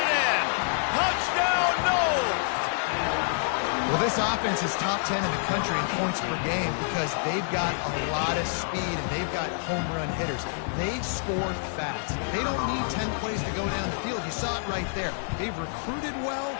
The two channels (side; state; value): right; silent; 60 dB below the other